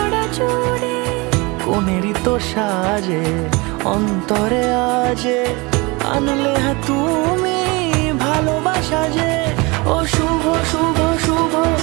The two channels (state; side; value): quieter; left; 25.9 dB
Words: জুড়ে। কোনেরই তো সাজে অন্তরে আজে আনলে হ্যাঁ তুমি ভালোবাসা যে। ও শুভ শুভ শুভ